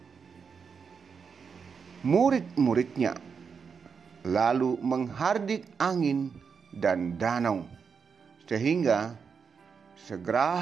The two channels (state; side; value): quieter; left; 6.0 dB